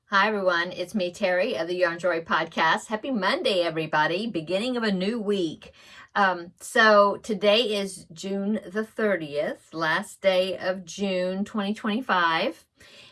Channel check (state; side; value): identical; both; correlation 1.00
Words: Hi everyone, it's me Terry of the Yarn Joy podcast. Happy Monday everybody, beginning of a new week. So today is June the 30th, last day of June 2025,